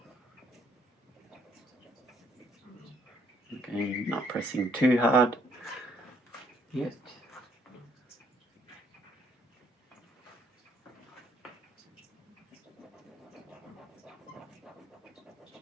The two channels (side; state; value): both; normal; correlation 0.67